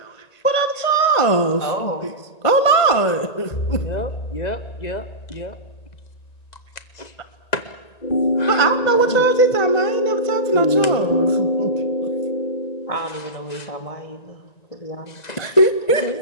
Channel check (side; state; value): right; late; 1.9 ms